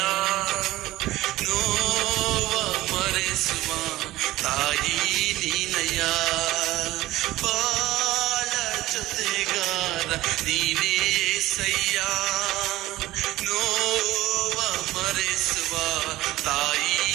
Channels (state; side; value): quieter; left; 16.6 dB